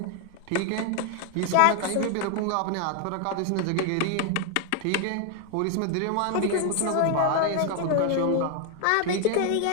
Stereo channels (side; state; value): both; different; correlation 0.00